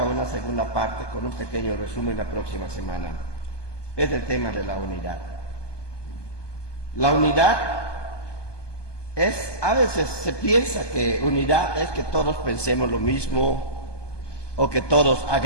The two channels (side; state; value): right; late; 1.2 ms